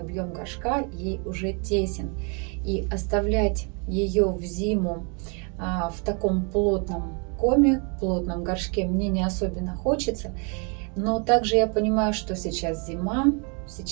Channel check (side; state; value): left; quieter; 35.6 dB